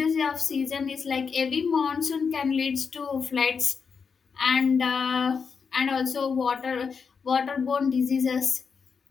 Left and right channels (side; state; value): right; quieter; 5.8 dB